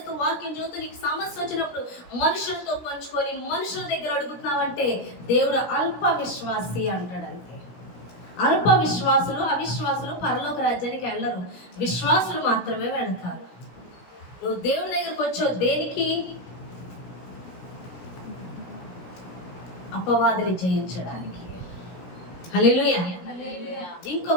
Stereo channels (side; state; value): right; late; 17 ms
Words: వాక్యం చూస్తూ నీకు సమస్య వచ్చినప్పుడు మనుషులతో పంచుకొని మనుషుల దగ్గర అడుగుతున్నావంటే దేవుడు అల్ప విశ్వాసి అంటాడంతే. అల్ప విశ్వాసులు, అవిశ్వాసులు పరలోక రాజ్యానికి వెళ్ళరు, విశ్వాసులు మాత్రమే వెళతారు. నువ్వు దేవుడి దగ్గరకు వచ్చావు దేనికి? అపవాదిని జయించడానికి. హల్లెలూయా.